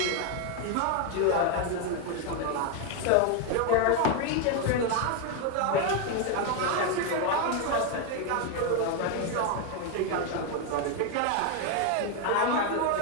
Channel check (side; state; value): both; different; correlation 0.01